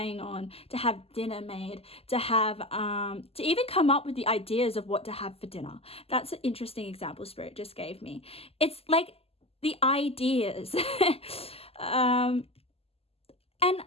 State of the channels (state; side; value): late; right; 0.29 ms